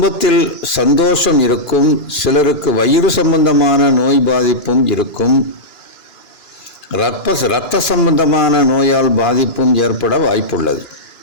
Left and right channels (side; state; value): right; late; 2.9 ms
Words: சந்தோஷம் இருக்கும், சிலருக்கு வயிறு சம்பந்தமான நோய் பாதிப்பும் இருக்கும், இரத்த சம்பந்தமான நோயால் பாதிப்பும் ஏற்பட வாய்ப்புள்ளது.